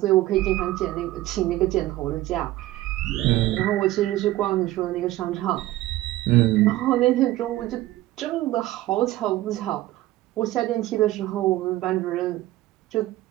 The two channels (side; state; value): left; quieter; 16.3 dB